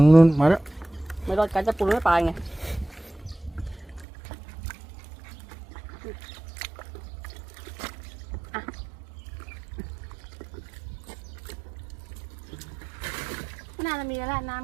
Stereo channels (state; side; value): drops out; left; at 4.0 s